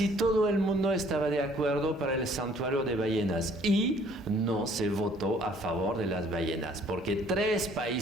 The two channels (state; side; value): normal; both; correlation 0.59